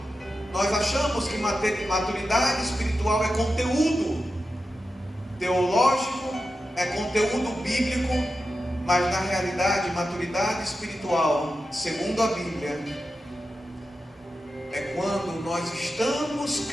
Nós achamos que maturidade espiritual é conteúdo teológico, é conteúdo bíblico, mas na realidade maturidade espiritual, segundo a Bíblia, é quando nós estamos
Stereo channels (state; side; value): normal; both; correlation 0.91